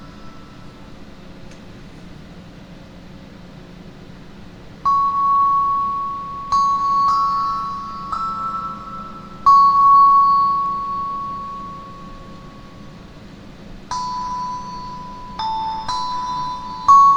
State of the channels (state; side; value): identical; both; correlation 1.00